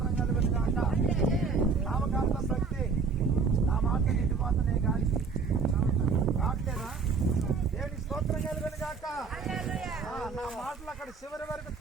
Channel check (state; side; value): quieter; left; 5.0 dB